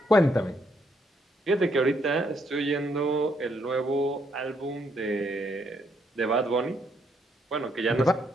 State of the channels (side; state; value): both; normal; correlation 0.73